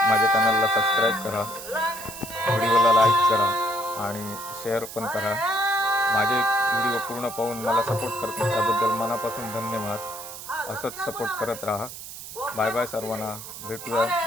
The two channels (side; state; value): right; noise; hiss, 12 dB below the sound